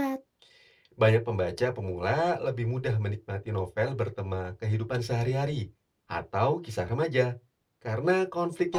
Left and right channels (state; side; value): identical; both; correlation 1.00